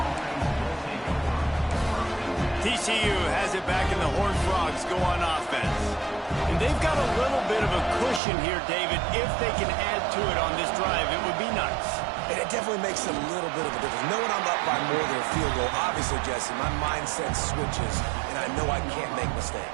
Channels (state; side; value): drops out; left; at 8.2 s